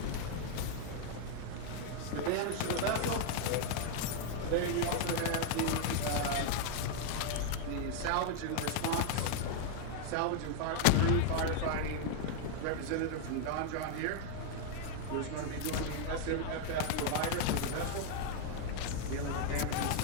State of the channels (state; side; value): different; both; correlation 0.00